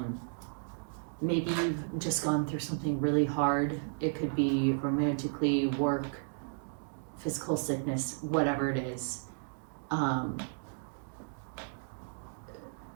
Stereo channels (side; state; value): left; silent; digital silence